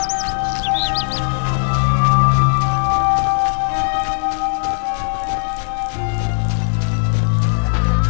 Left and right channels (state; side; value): silent; right; digital silence